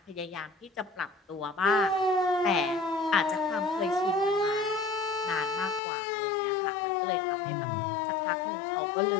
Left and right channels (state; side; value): drops out; right; at 5.8 s